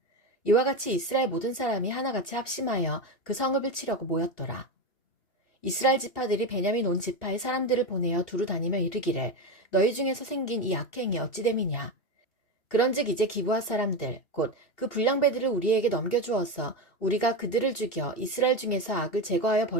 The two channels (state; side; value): late; right; 2.7 ms